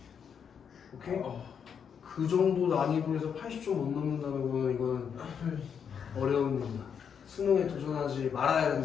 오케이? 그 정도 난이도에서 80점 못 넘는다는 거는 이건 어려운 일이다. 수능에 도전하지 말아야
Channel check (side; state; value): right; quieter; 7.3 dB